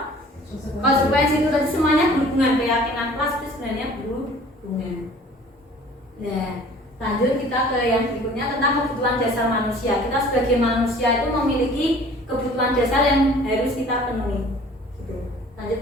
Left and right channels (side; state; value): both; normal; correlation 0.49